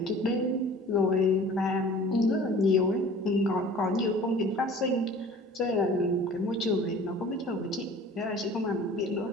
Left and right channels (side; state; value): both; normal; correlation 0.45